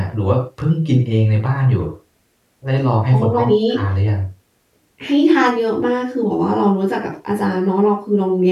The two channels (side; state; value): both; identical; correlation 1.00